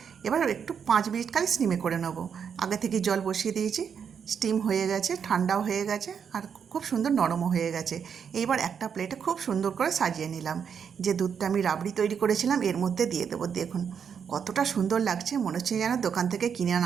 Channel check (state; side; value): quieter; left; 7.2 dB